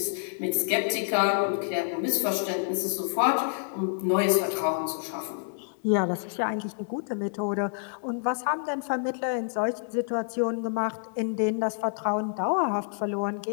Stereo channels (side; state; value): right; silent; 59 dB below the other